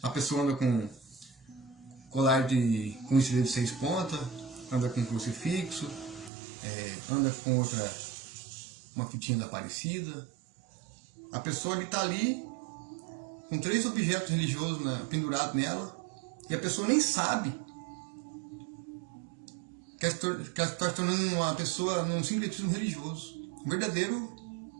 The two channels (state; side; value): drops out; left; at 6.3 s